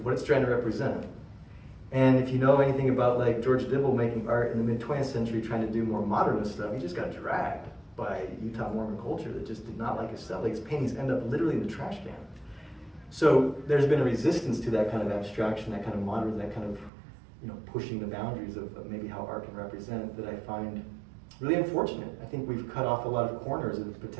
what it's trying to represent. And if you know anything about like George Dibble making art in the mid-20th century trying to do more modernist stuff, he just got dragged by Utah Mormon culture that just did not like his stuff. Like his paintings end up literally in the trash can. So there's been a resistance to that kind of abstraction, that kind of modern, that kind of pushing the boundaries of maybe how art can represent, that I find really unfortunate. I think we've cut off a lot of corners of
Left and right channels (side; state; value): left; drops out; at 16.9 s